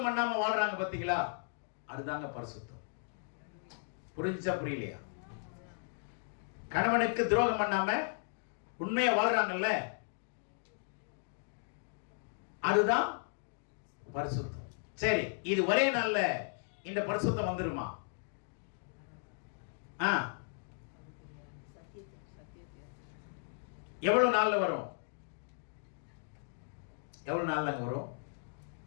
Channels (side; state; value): right; silent; digital silence